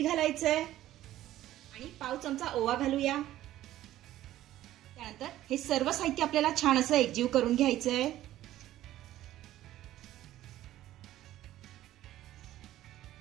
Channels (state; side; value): quieter; left; 14.0 dB